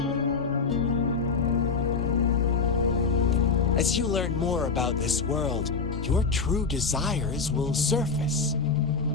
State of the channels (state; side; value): quieter; right; 4.8 dB